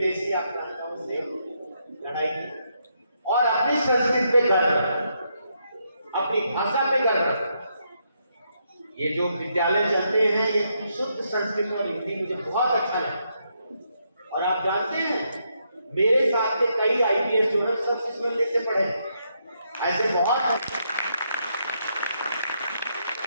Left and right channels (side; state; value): both; inverted; correlation -0.78